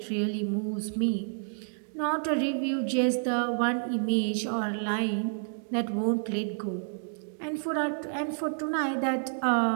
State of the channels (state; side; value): silent; left; digital silence